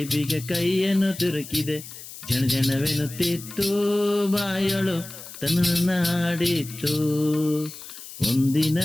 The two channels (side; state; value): left; noise; hiss, 14 dB below the sound